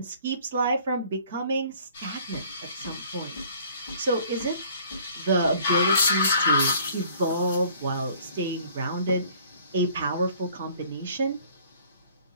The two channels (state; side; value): inverted; both; correlation -0.54